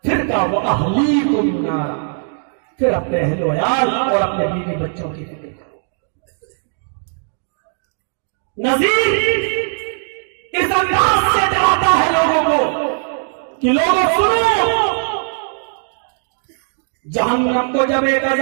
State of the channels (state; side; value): silent; left; digital silence